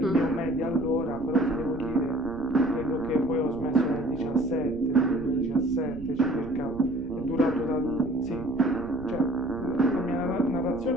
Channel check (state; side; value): noise; right; rumble, 15 dB below the sound